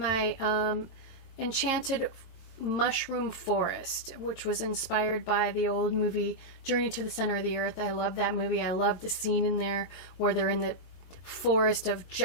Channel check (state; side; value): late; right; 22 ms